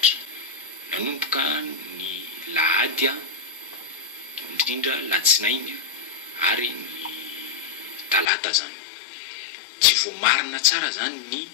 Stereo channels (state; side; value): drops out; right; at 8.2 s